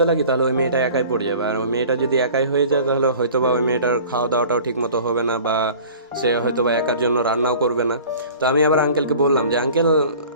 লাগি তাহলে ওই মেয়েটা একাই পড়ে যাবে, আর ওই মেয়েটা যদি একাই হয়ে যায় তাহলে হয়তো বা ওই মেয়েটার খাওয়া দাওয়াটাও ঠিক মতো হবে না, বা সে হয়তো বা একার জন্য রান্নাও করবে না। তো আমি আবার আঙ্কেলকে বললাম যে আঙ্কেল,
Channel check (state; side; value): inverted; both; correlation -0.44